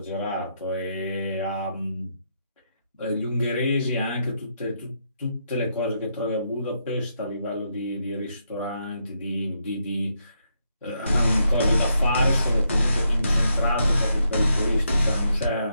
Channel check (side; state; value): both; inverted; correlation -0.79